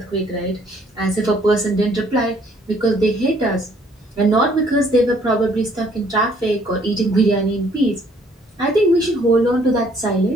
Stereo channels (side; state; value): both; normal; correlation 0.63